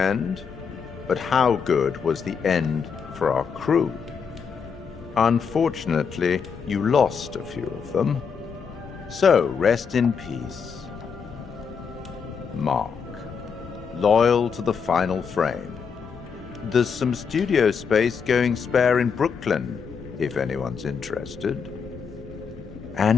but how good was the end for our crew? Unfortunately, you lost a few of them. So, rest in peace. Mark, loyal to the final frame. There's some studio space going spare in Brooklyn, if anyone's interested.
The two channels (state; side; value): quieter; right; 6.2 dB